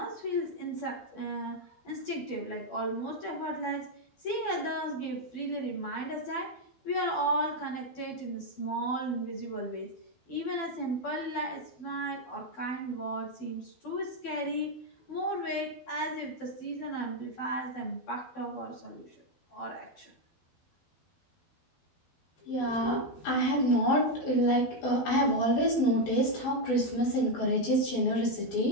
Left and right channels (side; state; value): right; late; 12 ms